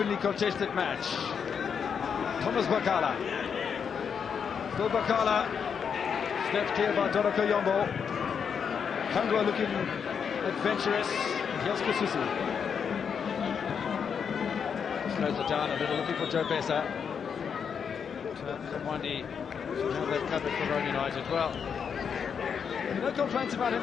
contested match. Thomas Bakala. Still Bakala. Snapped clear by Doroko Yombo. Kangwa looking adventurous. And here's Kasusu. Slows it down a little, looking for Joe Besa. Kamwandi should have that covered for Roan United. Well, no complaints about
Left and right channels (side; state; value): right; quieter; 6.9 dB